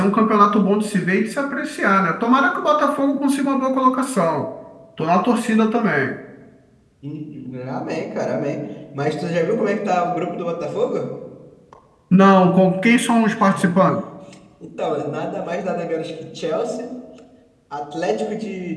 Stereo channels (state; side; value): identical; both; correlation 1.00